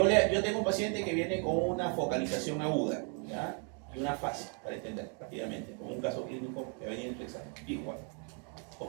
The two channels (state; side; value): quieter; left; 39.8 dB